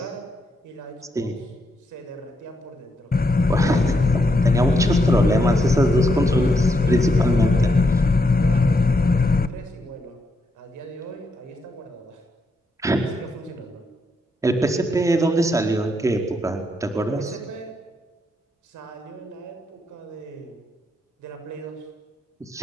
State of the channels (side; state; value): both; normal; correlation 0.80